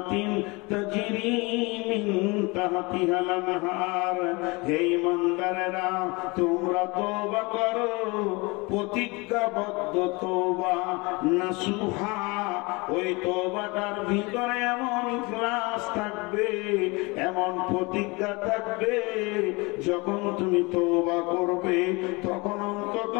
তাজরি মিন তাহতিহাল আনহার। হে ঈমানদারেরা, তোমরা তওবা করো, প্রতিজ্ঞাবদ্ধ তওবা নাসুহা, ওই তওবাটার ভিতরে এমন ইখলাস থাকবে, এমন প্রতিজ্ঞা থাকবে, যখন তুমি তওবা করবে তখন অন্তত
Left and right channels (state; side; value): quieter; right; 26.2 dB